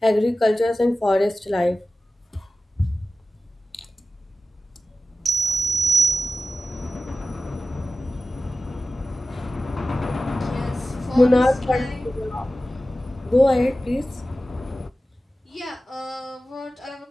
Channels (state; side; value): normal; both; correlation 0.94